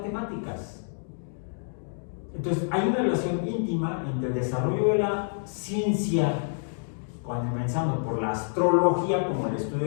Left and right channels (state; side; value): silent; right; digital silence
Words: Entonces, hay una relación íntima entre el desarrollo de la ciencia, comenzando por la astrología, como el estudio